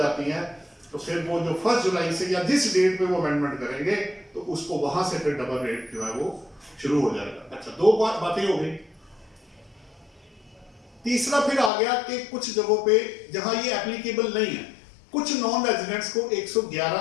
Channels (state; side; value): drops out; right; at 11.7 s